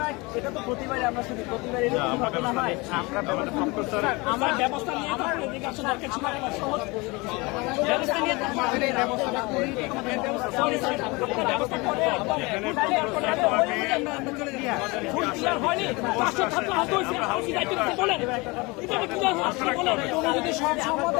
এটা তো প্রতিবারে আমরা শুধু প্রতিবারে এরকম ঘটনা হয়। আমরা ব্যবস্থা নিয়ে আমার ব্যবস্থা নিয়ে সরি স্যার ব্যবস্থা করে ফুল ক্লিয়ার হয়নি, 500 ছাত্র আহত হয়েছে, আপনি দায়িত্ব নিতে বলেন এটা কি আপনি বলেন যদি সব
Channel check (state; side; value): quieter; right; 25.3 dB